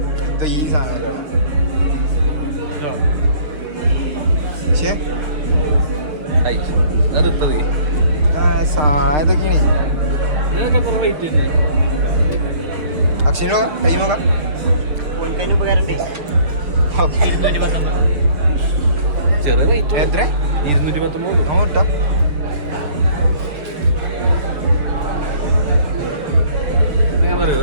ഈ സാധനം. സാധനൊക്കെയാണ്. ഇതിനൊക്കെ എത്ര റേറ്റ് ഉണ്ട്? അക്ഷയ നോക്കാം. ടൈം നോക്കാം. ചെറിയ റേറ്റ്. എത്ര? 219. നോട്ടോ. നിങ്ങൾ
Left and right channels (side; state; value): left; late; 6.4 ms